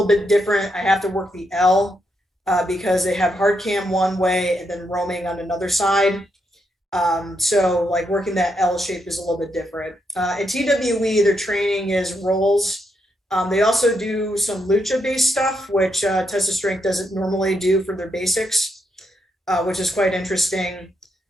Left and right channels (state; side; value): normal; both; correlation 0.80